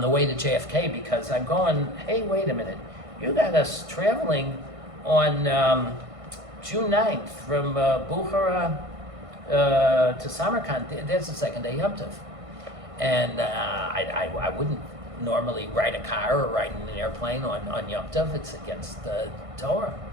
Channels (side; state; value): left; late; 1.6 ms